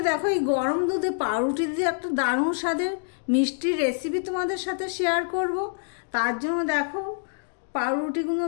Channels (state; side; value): silent; right; digital silence